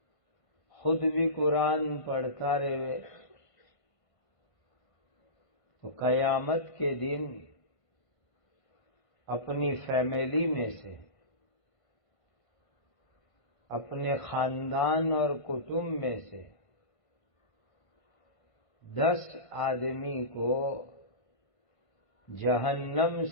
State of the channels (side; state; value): right; late; 1.5 ms